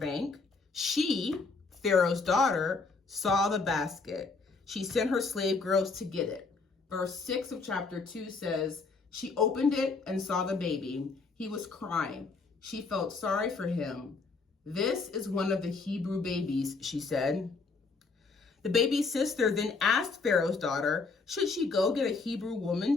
She, Pharaoh's daughter, saw the basket. She sent her slave girls to get it. Verse 6 of chapter 2 says, she opened it and saw the baby. He was crying. She felt sorry for him. This is one of the Hebrew babies, she said. The baby's sister then asked Pharaoh's daughter, should she go get a Hebrew woman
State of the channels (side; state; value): right; quieter; 4.2 dB